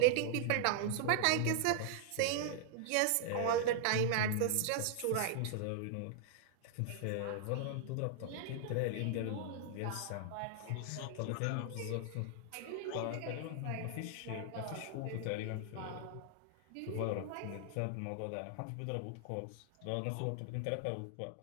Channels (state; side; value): different; both; correlation -0.01